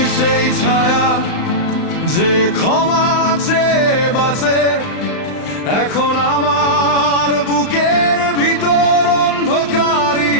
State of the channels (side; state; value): right; late; 35 ms